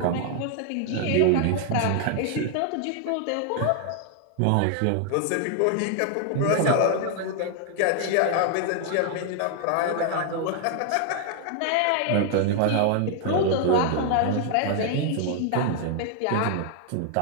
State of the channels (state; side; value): different; both; correlation 0.00